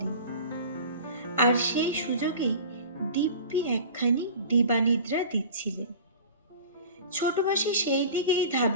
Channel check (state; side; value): inverted; both; correlation -0.38